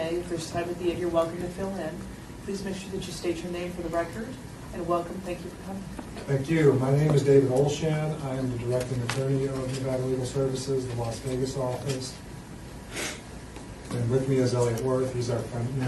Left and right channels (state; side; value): identical; both; correlation 1.00